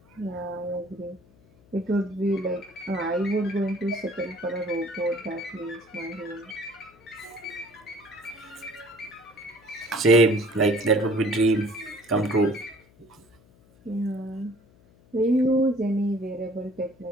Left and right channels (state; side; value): noise; left; hum, 28 dB below the sound